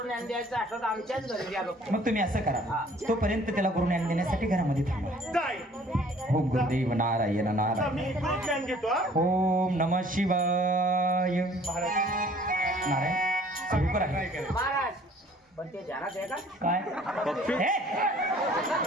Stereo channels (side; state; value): both; normal; correlation 0.55